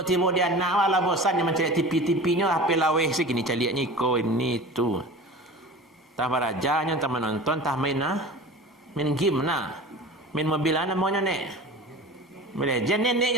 tiba dia nak wala bosan dia mencari TV-TV-nya HP laweh sikini caliknya ko ini tu. Tah barajanya tah menonton tah main game main mobil namanya nek. Legend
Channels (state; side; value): normal; both; correlation 0.37